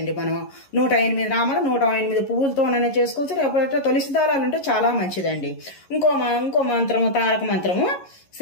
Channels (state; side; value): late; right; 11 ms